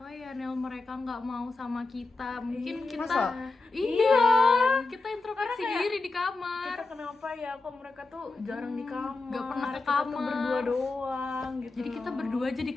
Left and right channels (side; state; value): right; quieter; 3.5 dB